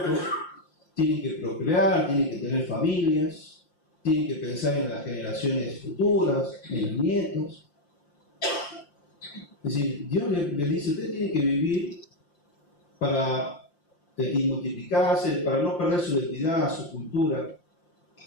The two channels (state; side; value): late; right; 5.7 ms